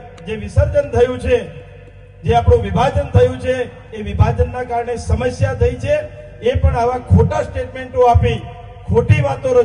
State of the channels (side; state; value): both; identical; correlation 1.00